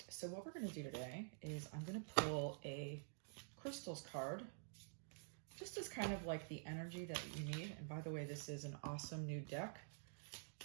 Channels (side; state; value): left; silent; digital silence